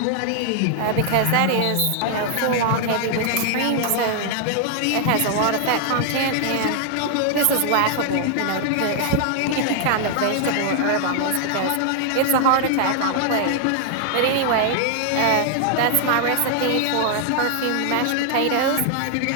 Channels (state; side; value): different; both; correlation 0.00